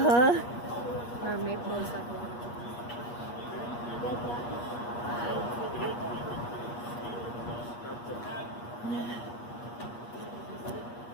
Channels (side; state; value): right; late; 8.4 ms